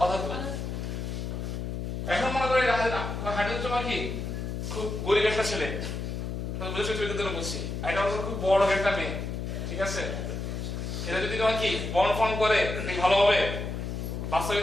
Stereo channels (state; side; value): noise; left; hum, 4 dB below the sound